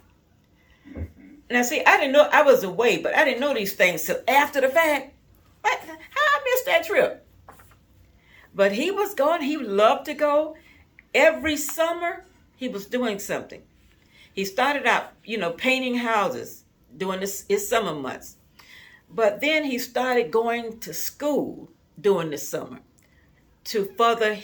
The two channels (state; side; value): identical; both; correlation 1.00